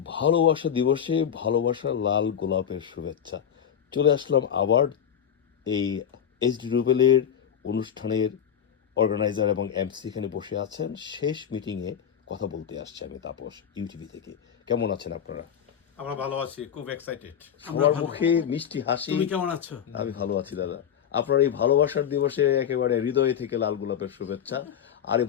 ভালোবাসা দিবসে ভালোবাসার লাল গোলাপের শুভেচ্ছা। চলে আসলাম আবার এই এইচডি রুবেলের অনুষ্ঠানের অর্গানাইজার এবং এমসি এখানে বসে আছেন। শেষ মিটিংয়ে কথা বলতে আসছে আমি তাপস, ইউটিভি থেকে। কেমন আছেন আপনারা? আমরা ভালো আছি, খুব এক্সাইটেড। সবার মুখে মিষ্টি হাসি। তুমি কেমন আছো? আমি ভালো আছি দাদা। আপনার এই ভালোবাসার দিবসে একেবারে হৃদয় থেকে লাল গোলাপের শুভেচ্ছা। আর এই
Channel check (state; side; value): quieter; right; 8.6 dB